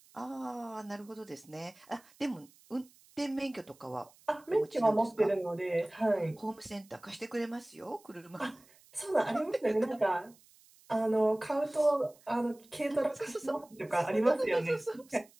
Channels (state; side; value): noise; right; hiss, 27 dB below the sound